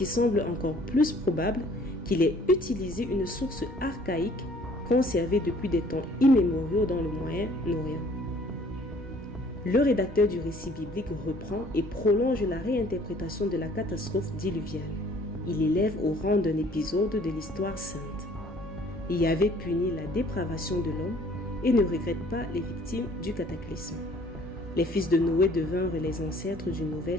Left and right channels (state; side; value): normal; both; correlation 0.56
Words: semble encore plus probable, qu'il ait utilisé une source archaïque conservée depuis des temps immémoriaux dans le Moyen-Orient. Le rédacteur du récit biblique reprend et prolonge la réinterprétation de la catastrophe diluviale. Il élève au rang d'un épisode de l'histoire sainte. Yahvé punit la dépravation de l'homme et ne regrette pas les victimes du cataclysme. Les fils de Noé devinrent les ancêtres d'une